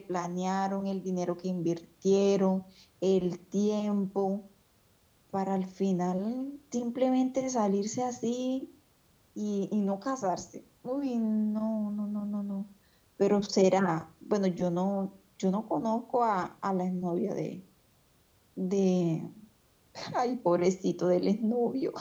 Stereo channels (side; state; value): both; identical; correlation 1.00